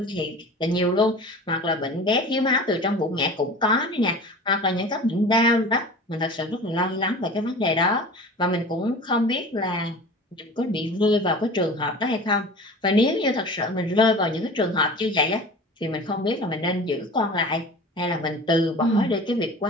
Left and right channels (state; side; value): normal; both; correlation 0.38